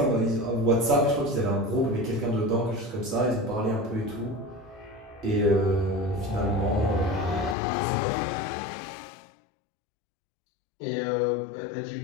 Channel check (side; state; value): right; drops out; at 7.6 s